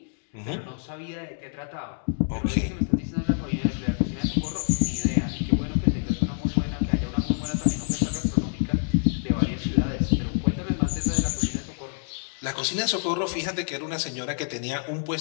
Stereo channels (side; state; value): right; silent; digital silence